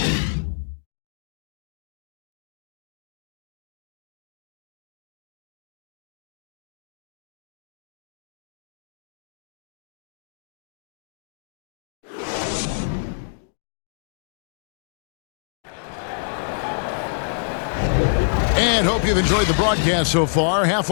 And hope you've enjoyed the broadcast so far.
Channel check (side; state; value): right; silent; digital silence